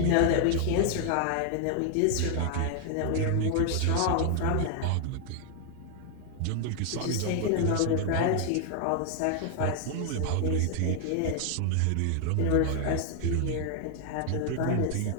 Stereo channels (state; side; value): different; both; correlation 0.00